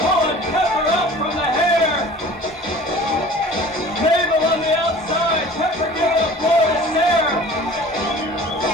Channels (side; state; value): both; normal; correlation 0.44